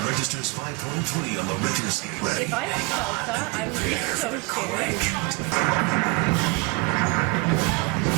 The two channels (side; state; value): left; quieter; 26.6 dB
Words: registers 5.3 on the Richter scale. If I felt that, I would be so scared.